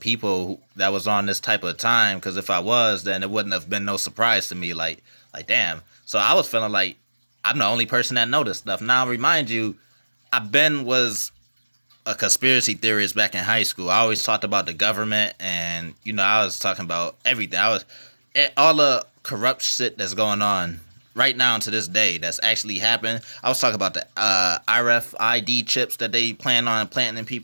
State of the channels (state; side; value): inverted; both; correlation -1.00